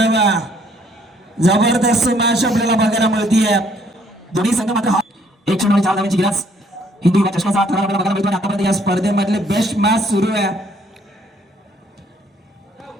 जबरदस्त मॅच आपल्याला बघायला मिळतीये. दोन्ही संघ मात्र एक चेंडू आणि 4 धावांची गिरास. हिंदू युवा चषकाचा थरार आपल्याला बघायला मिळतो. आतापर्यंत या स्पर्धेमधले बेस्ट मॅच सुरू आहे.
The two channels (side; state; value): both; normal; correlation 0.65